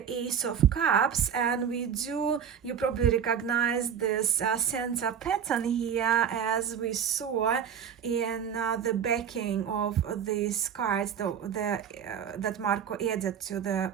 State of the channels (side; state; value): left; quieter; 8.0 dB